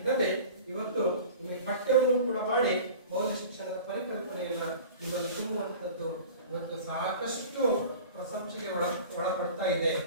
ಇವತ್ತು ನಿಮಗೆ ಪಠ್ಯವನ್ನು ಕೂಡ ಮಾಡಿ ಮೌಲ್ಯ ಶಿಕ್ಷಣದ ಪರಿಕಲ್ಪನೆಯನ್ನ ನಿಮ್ಮಲ್ಲಿ ತುಂಬುವಂಥದ್ದು ಇವತ್ತು ಸಾಕಷ್ಟು ಪ್ರಶಂಸೆಗೆ ಒಳಪಡ್ತಾ ಇದೆ.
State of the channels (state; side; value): inverted; both; correlation -0.40